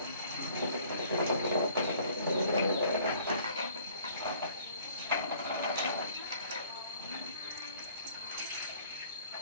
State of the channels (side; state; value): both; inverted; correlation -0.56